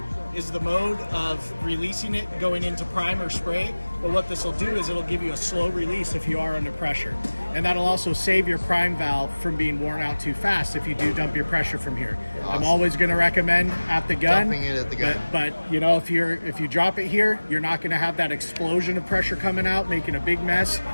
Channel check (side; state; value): both; inverted; correlation -1.00